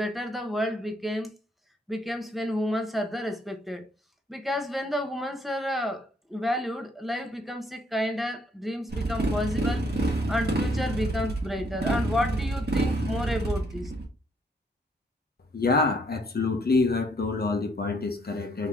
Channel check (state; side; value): normal; both; correlation 0.69